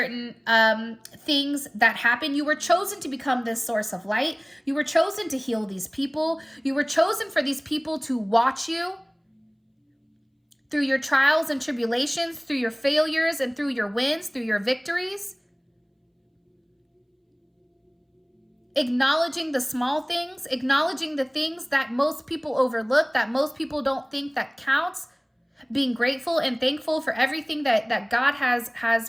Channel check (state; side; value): identical; both; correlation 1.00